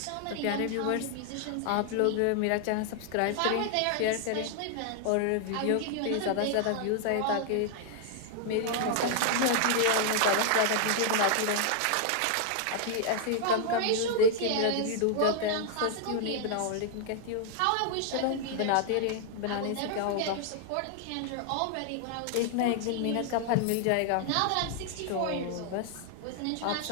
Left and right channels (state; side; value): different; both; correlation 0.00